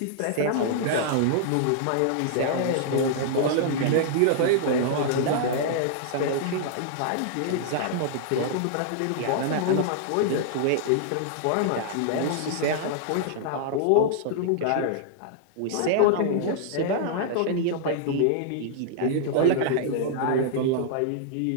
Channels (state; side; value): different; both; correlation -0.01